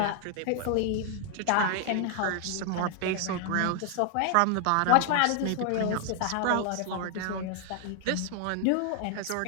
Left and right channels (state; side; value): different; both; correlation 0.00